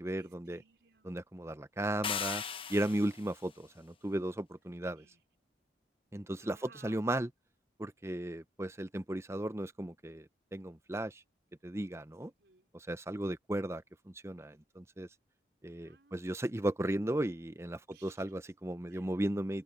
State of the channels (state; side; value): normal; both; correlation 0.81